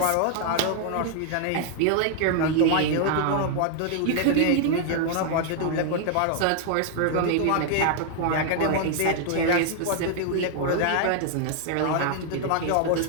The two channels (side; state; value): both; different; correlation 0.00